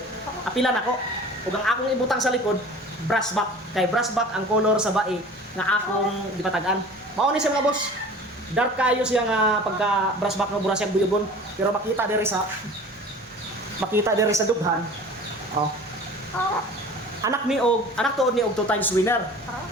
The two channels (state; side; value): normal; both; correlation 0.42